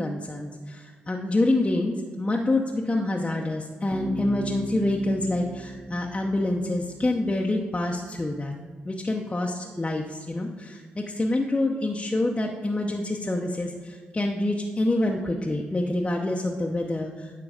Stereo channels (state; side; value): normal; both; correlation 0.90